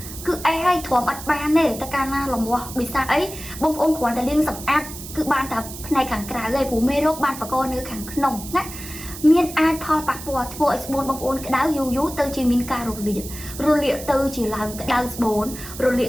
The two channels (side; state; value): right; noise; hiss, 12 dB below the sound